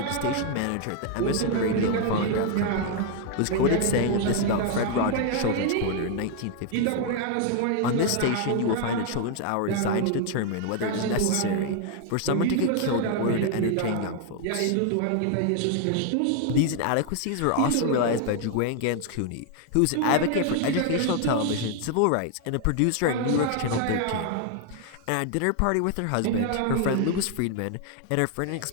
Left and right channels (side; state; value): both; different; correlation 0.00